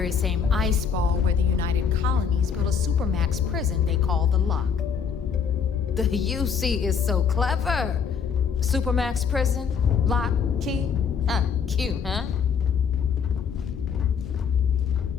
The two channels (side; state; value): right; quieter; 6.7 dB